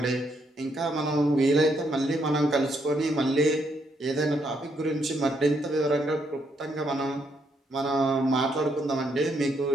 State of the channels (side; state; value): both; normal; correlation 0.75